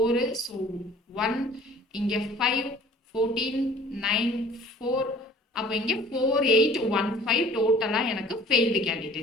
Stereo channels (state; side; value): normal; both; correlation 0.50